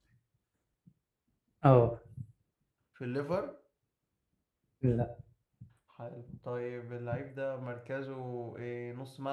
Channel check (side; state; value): both; identical; correlation 1.00